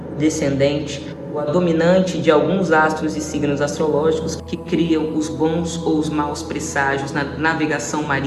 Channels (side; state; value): both; identical; correlation 1.00